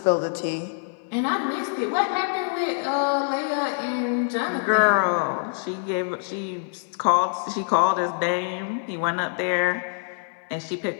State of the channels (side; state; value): right; silent; 62 dB below the other